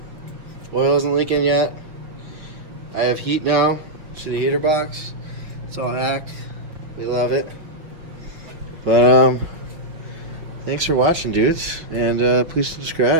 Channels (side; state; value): left; late; 5.6 ms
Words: isn't leaking yet. I have heat now. See the heater box? It's all hacked. We love it. But thanks for watching, dudes, and please